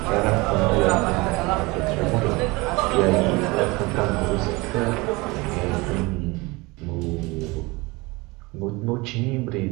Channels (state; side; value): quieter; left; 24.0 dB